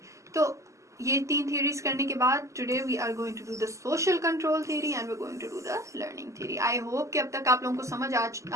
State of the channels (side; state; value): left; late; 0.15 ms